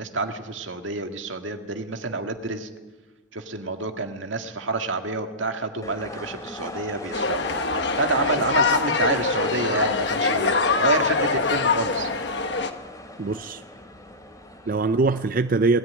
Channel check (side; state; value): both; normal; correlation -0.13